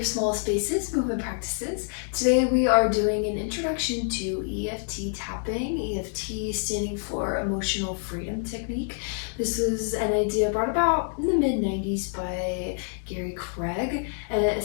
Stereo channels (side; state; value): right; silent; 60 dB below the other